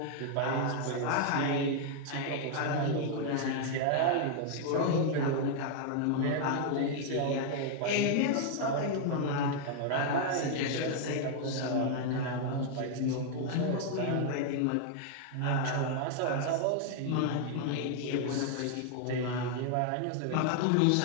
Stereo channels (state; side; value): different; both; correlation 0.00